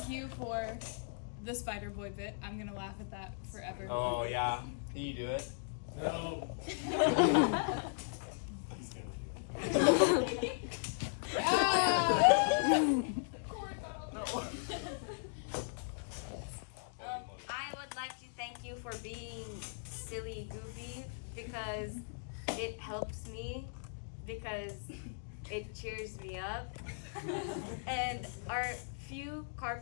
you for the Spider Boy bit. I'm gonna laugh at that forever. Oh yeah. Can you do it? No. I would like to thank you for being silly, goofy, because it helps me, because it cheers me up. And our few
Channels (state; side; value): silent; right; digital silence